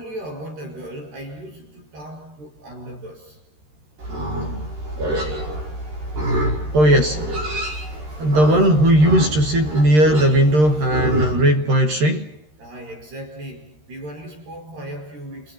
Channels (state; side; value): late; left; 13 ms